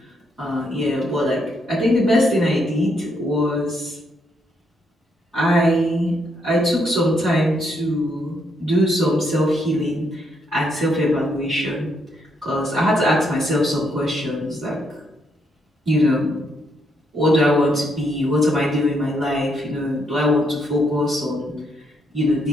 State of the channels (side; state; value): both; normal; correlation 0.75